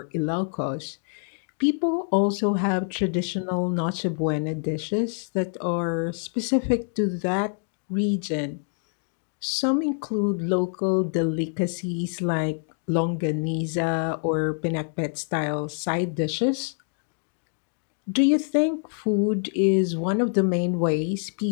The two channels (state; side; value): silent; right; 60 dB below the other